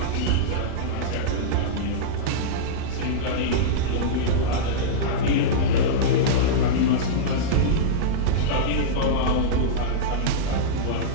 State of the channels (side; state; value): both; different; correlation -0.04